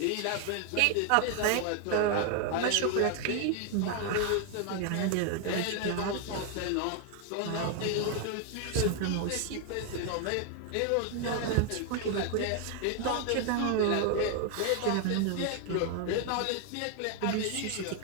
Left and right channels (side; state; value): both; different; correlation 0.00